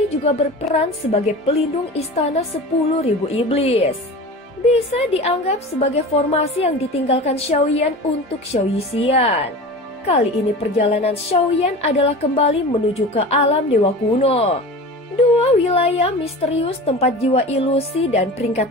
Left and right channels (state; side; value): normal; both; correlation 0.34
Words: juga berperan sebagai pelindung istana 10.000 iblis. Bisa dianggap sebagai formasi yang ditinggalkan Xiaoyan untuk Xiao Yixian. Kali ini perjalanan Xiaoyan adalah kembali menuju ke alam dewa kuno. Dua wilayah misterius tempat jiwa ilusi dan